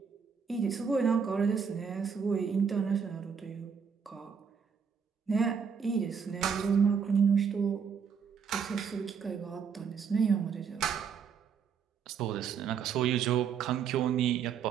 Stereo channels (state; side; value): quieter; left; 6.6 dB